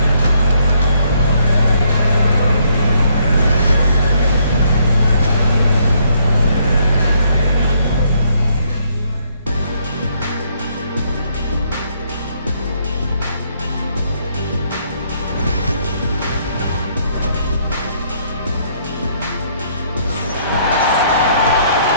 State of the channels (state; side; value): inverted; both; correlation -0.70